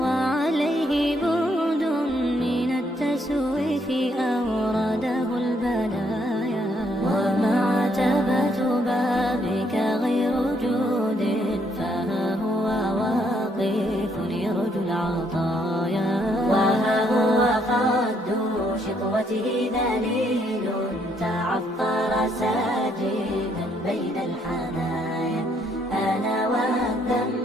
العطايا وها هو قد شطوته ذليل تعطر ساجدا بين الحنايا أنا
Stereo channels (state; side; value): normal; both; correlation 0.71